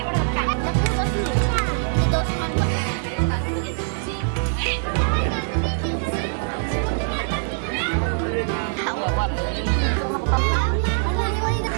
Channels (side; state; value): left; silent; digital silence